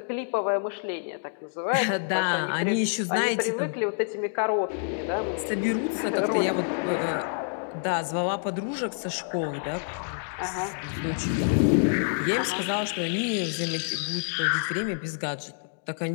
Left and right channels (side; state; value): right; silent; digital silence